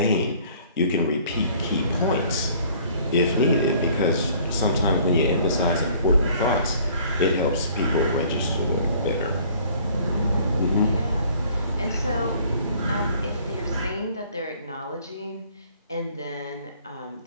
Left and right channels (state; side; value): inverted; both; correlation -0.55